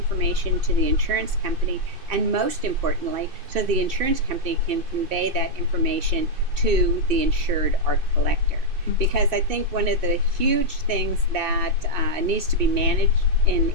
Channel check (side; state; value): left; late; 2.7 ms